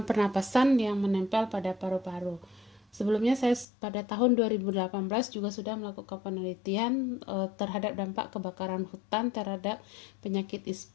pernapasan yang menempel pada paru-paru. Sebelumnya saya pada tahun 2018 juga sudah melakukan penelitian terhadap dampak kebakaran hutan terhadap penyakit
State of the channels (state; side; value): drops out; right; at 3.7 s